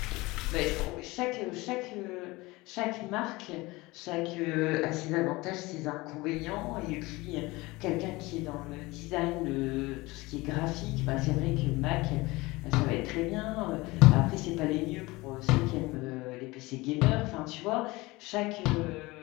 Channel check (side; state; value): right; quieter; 21.8 dB